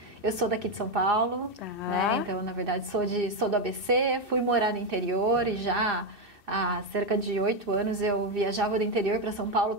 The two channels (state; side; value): late; left; 2.6 ms